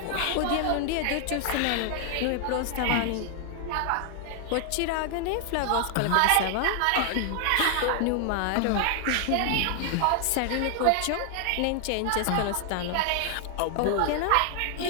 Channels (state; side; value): different; both; correlation 0.00